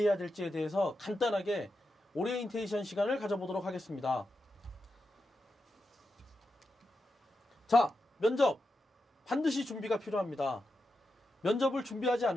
될지에 대해서 간단하게 오리엔테이션 시간을 가져보도록 하겠습니다. 자, 면접 반드시 준비가 필요합니다. 면접을 준비하지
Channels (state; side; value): normal; both; correlation 0.88